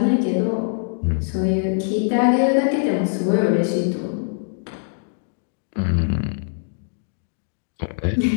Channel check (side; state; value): right; silent; digital silence